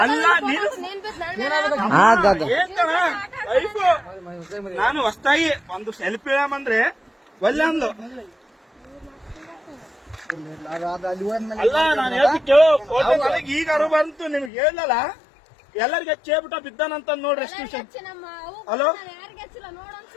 ಅಲ್ಲ ನೀನು ಏನ್ ಲೈಫು. ನಾನು ಹೊಸ್ತಾಗಿ ಒಂದು ಸೆಲ್ಫಿ ಅಂದ್ರೆ ಒಳ್ಳೆ ಅಂದ್ಲು. ಅಲ್ಲಿ ಹೋದ್ಮೇಲೆ ಅಲ್ಲ ನಾನು ಹೇಳ್ತಿ ಕೇಳು, ಫೋಟೋ ನನಗೆ ಈಗ ಅರು ಬಂತು, ನಿಮ್ಗೆ ಹೇಳಲ್ಲ ಎಲ್ಲರಿಗೆ ಚೇಬಿಟ ಬಿದ್ದಾನಂತ ನೋಡ್ರಿ ಎಷ್ಟು ವಿಷಯ. ಹಲೋ ಯಾರಿಗೆ ಹಚ್ಚಿಲ್ಲ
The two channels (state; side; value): drops out; right; at 14.5 s